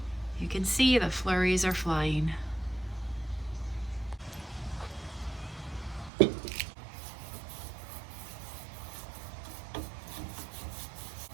you can see the flurries are flying.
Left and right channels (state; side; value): drops out; left; at 6.1 s